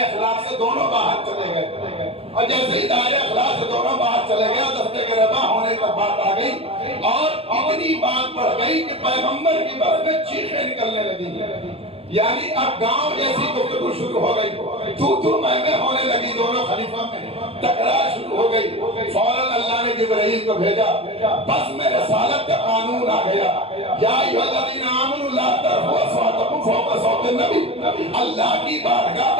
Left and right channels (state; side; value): late; left; 0.28 ms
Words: اخلاق سے دونوں باہر چلے گئے. اور جیسے ہی دائرہ اخلاق سے دونوں باہر چلے گئے دستے کے ربا ہونے تک بات آ گئی اور اتنی بات بڑھ گئی کہ پیغمبر کی بات میں چیخیں نکلنے لگی. یعنی اب گاؤں جیسی گفتگو شروع ہو گئی، تو میں ہونے لگی. دونوں خلیفہ میں تکرار شروع ہو گئی. فوراً اللہ نے جبرائیل کو بھیجا، بس میں رسالت کا قانون آ گیا. یا ایھا الذین آمنوا لا ترفعوا اصواتکم فوق صوت النبی. اللہ کی بارگاہ